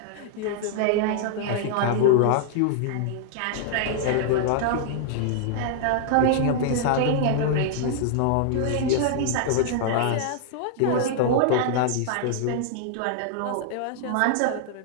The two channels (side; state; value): both; different; correlation -0.01